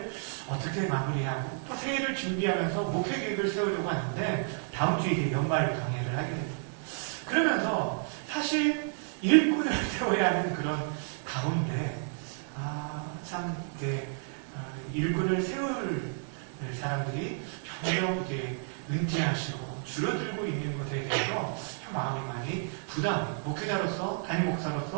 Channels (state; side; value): silent; left; 57 dB below the other